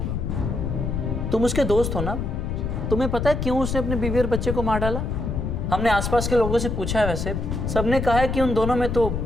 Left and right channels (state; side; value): noise; left; rumble, 2 dB below the sound